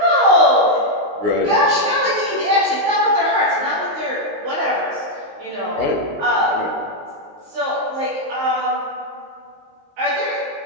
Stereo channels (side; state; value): left; late; 19 ms